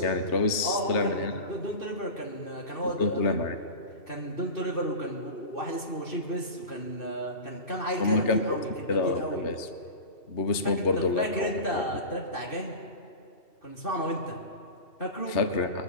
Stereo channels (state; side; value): late; right; 2.7 ms